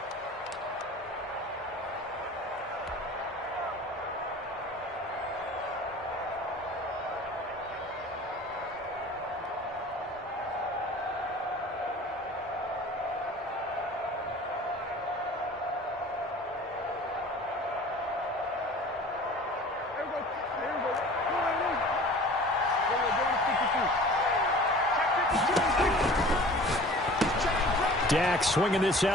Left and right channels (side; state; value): both; normal; correlation 0.44